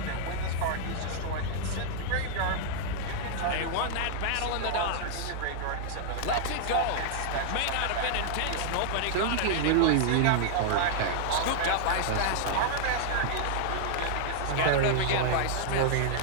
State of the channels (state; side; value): different; both; correlation -0.01